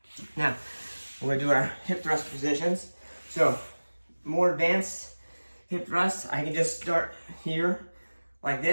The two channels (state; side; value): inverted; both; correlation -1.00